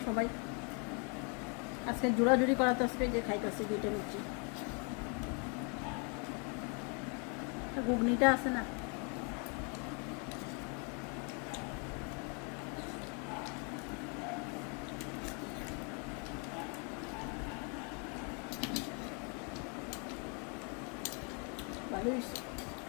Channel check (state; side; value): quieter; right; 36.1 dB